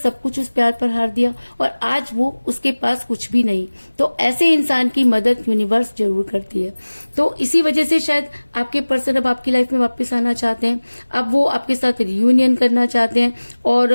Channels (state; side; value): inverted; both; correlation -1.00